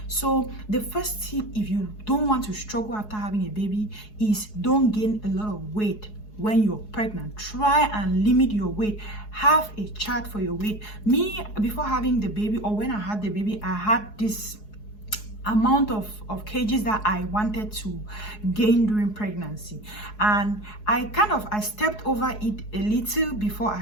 So the first tip, if you don't want to struggle after having a baby, is don't gain a lot of weight when you're pregnant. Try and limit your weight. Have a chart for your weight. Me, before having the baby, or when I had the baby, I had this amount of kgs that I wanted to gain during pregnancy, and I stepped over it a little before I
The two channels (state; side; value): late; right; 4.7 ms